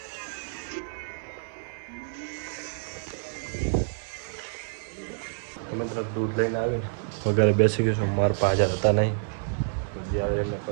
મિત્ર દૂધ લઈને આવીને વગેરે બેસી ગયું છું. મારા પાસે હાજર હતા નહીં, જે આવે એમને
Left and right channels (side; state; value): left; silent; 59 dB below the other